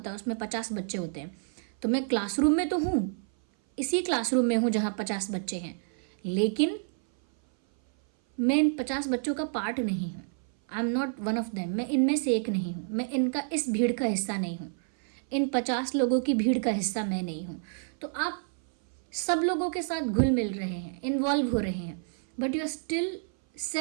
है उसमें 50 बच्चे होते हैं, तो मैं क्लासरूम में तो हूँ, इसी क्लासरूम में हूँ जहाँ 50 बच्चे हैं, लेकिन मैं इन 50 बच्चों का पार्ट नहीं हूँ, I am not one of them, मैं इनमें से एक नहीं हूँ, मैं इनका इस भीड़ का हिस्सा नहीं हूँ, इन 50 लोगों की भीड़ का हिस्सा मैं नहीं हूँ। तो आप सब लोगों के साथ घुल मिल रहे हैं, इन्वॉल्व हो रहे हैं, but you are still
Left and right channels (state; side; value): silent; left; 57 dB below the other